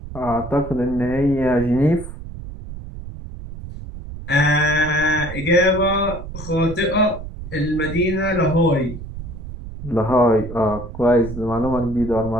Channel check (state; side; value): noise; right; rumble, 11 dB below the sound